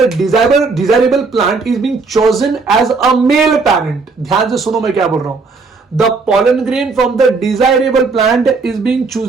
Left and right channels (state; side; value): quieter; left; 4.2 dB